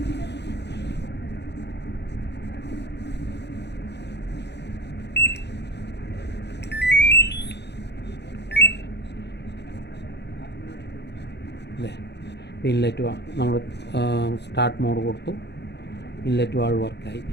ഇൻലെറ്റ് നമ്മൾ സ്റ്റാർട്ട് മോഡ് കൊടുത്തു, ഇൻലെറ്റ് വാൾവ് വർക്കായി.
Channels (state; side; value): late; right; 0.50 ms